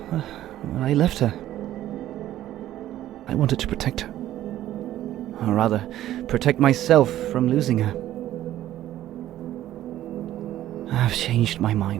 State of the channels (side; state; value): left; quieter; 13.3 dB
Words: Well, I left her. I wanted to protect her. Or rather, protect myself from losing her. I've changed my